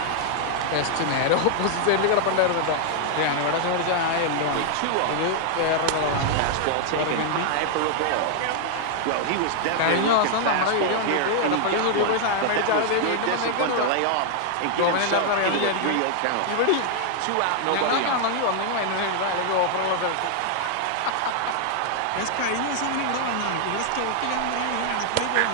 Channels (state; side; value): different; both; correlation 0.00